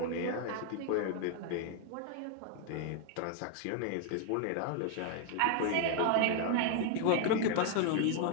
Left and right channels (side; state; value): both; different; correlation 0.00